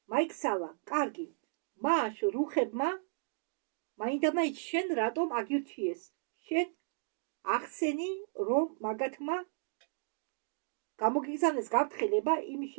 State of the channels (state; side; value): silent; left; digital silence